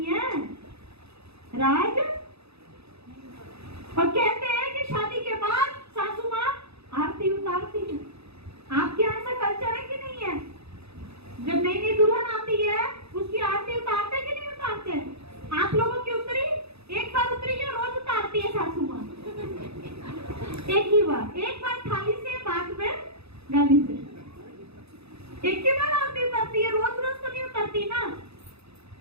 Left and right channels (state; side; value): late; left; 0.79 ms